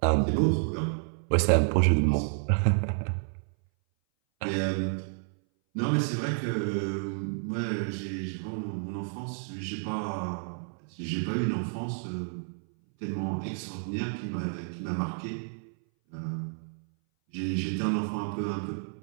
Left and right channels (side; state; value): left; silent; 58 dB below the other